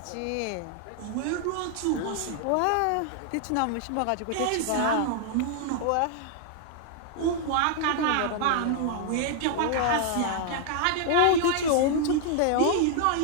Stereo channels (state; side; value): different; both; correlation 0.00